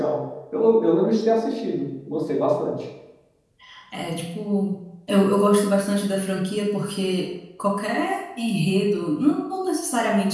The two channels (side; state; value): both; identical; correlation 1.00